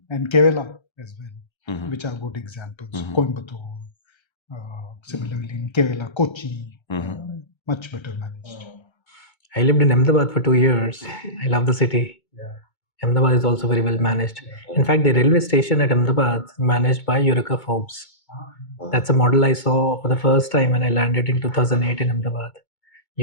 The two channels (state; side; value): late; right; 2.2 ms